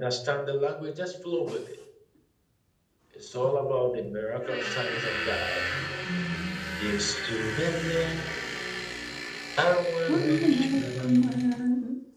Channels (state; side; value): identical; both; correlation 1.00